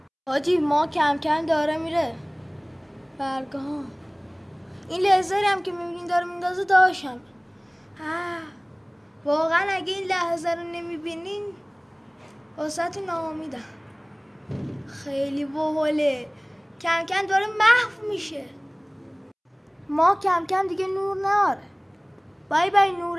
حاجی ما کم کم داره میره برگاه. این لیزری هم که میبینین داره میندازه داشتم. واقعا اگه این لحظه رو نمیبینین واسه ناامیدم. خیلی باحاله. کم کم داره محو میشه. ما کم کم دیگه نور ناره. بای بای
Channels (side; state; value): both; identical; correlation 1.00